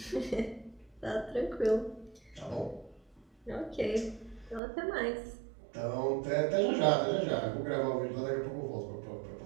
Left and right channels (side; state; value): left; drops out; at 4.6 s